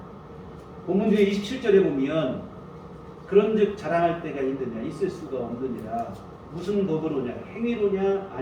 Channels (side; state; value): both; identical; correlation 1.00